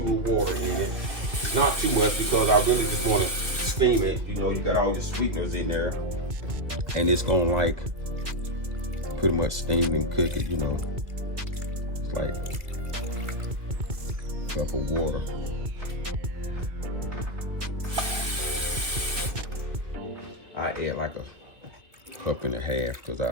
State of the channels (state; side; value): late; left; 2.1 ms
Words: of water in it. Not too much because I really just want to steam it. You know, you got all your sweeteners in there. And it's gonna like pretty much steam and cook it, you know. It's like a cup of water. I add like a cup and a half because